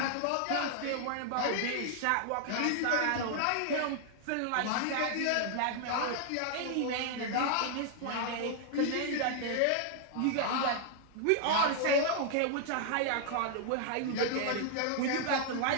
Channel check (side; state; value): both; different; correlation 0.00